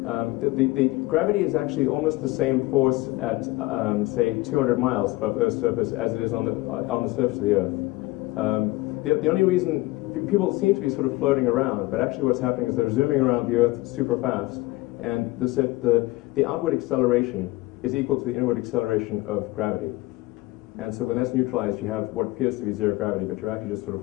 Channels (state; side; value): quieter; right; 20.4 dB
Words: The gravity is actually almost the same force at, say, 200 miles above Earth's surface as it is on the surface of the Earth. The only reason people seem to be sort of floating around, but actually what's happening is they're zooming around the Earth super fast, and the outward acceleration is equal to the inward acceleration of gravity. And so when that's neutralized, you have what appears to be zero gravity, but you're actually just sort